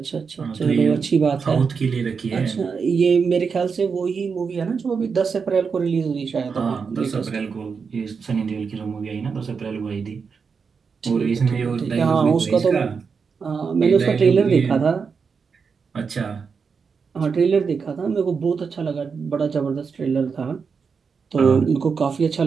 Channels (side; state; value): left; quieter; 5.6 dB